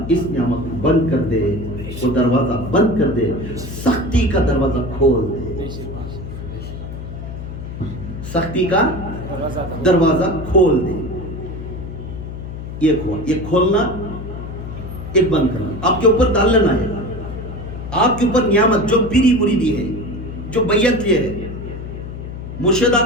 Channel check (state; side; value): noise; left; hum, 9 dB below the sound